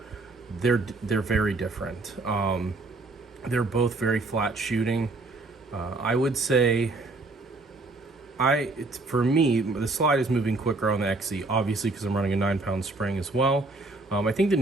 They're very different. They're both very flat shooting. I would say for me, the slide is moving quicker on the XC, obviously because I'm running a 9-pound spring as well. I think the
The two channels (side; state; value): left; quieter; 3.2 dB